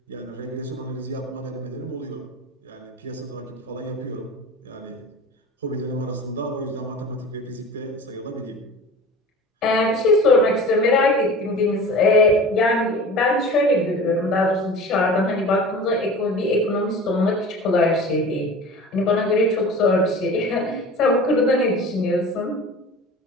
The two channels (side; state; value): both; normal; correlation 0.38